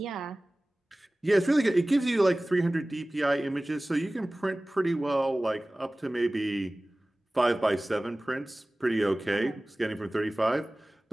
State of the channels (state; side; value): normal; both; correlation 0.98